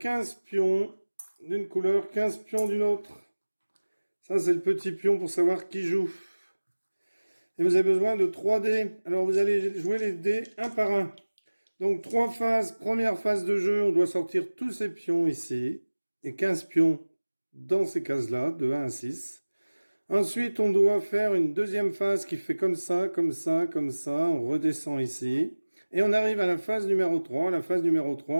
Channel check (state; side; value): inverted; both; correlation -1.00